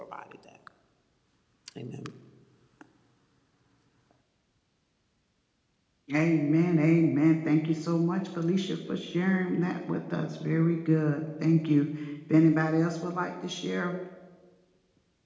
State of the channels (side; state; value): both; identical; correlation 1.00